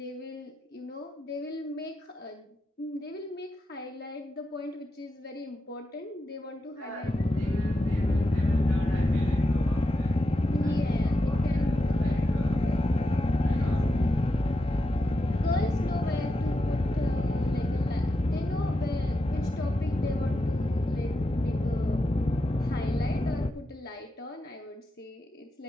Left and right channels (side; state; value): both; normal; correlation 0.87